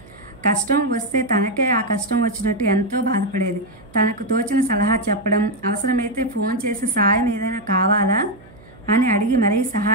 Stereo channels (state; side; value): noise; right; hum, 24 dB below the sound